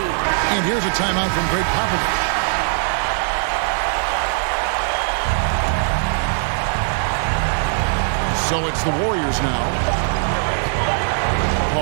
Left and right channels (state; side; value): silent; left; 66 dB below the other